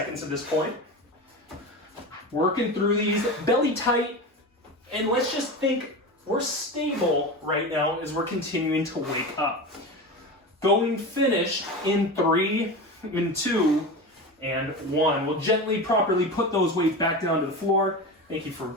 at this point. Working through these, belly tight. And let's just think we're stable right now as we're continuing to wake up. Going finished in 3, in 2, and 1. We'll gently, properly put those weights back down to the floor. Thank you for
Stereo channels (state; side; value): normal; both; correlation 0.26